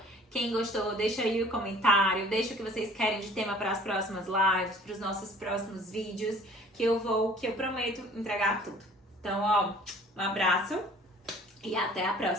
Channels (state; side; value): normal; both; correlation 0.51